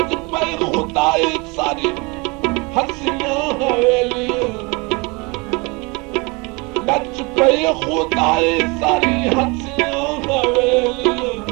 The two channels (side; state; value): left; quieter; 27.8 dB